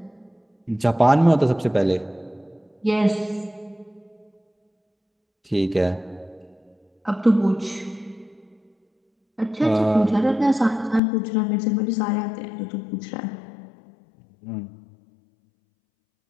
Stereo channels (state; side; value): drops out; right; at 11.0 s